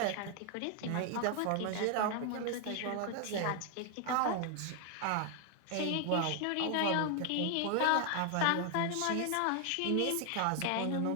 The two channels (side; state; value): both; different; correlation 0.01